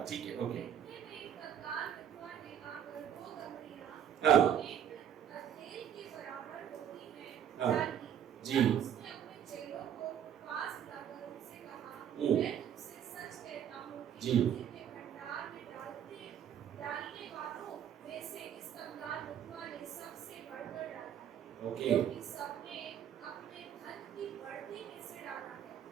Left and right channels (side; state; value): left; quieter; 9.2 dB